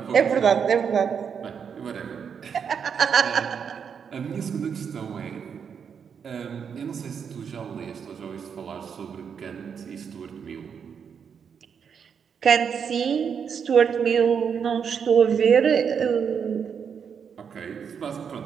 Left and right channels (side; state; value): left; quieter; 7.0 dB